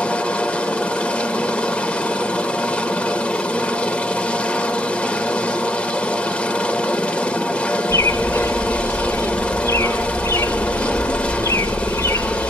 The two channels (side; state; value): both; normal; correlation 0.71